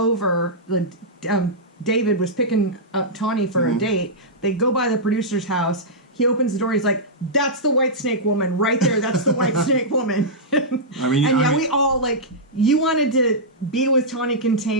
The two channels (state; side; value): normal; both; correlation -0.12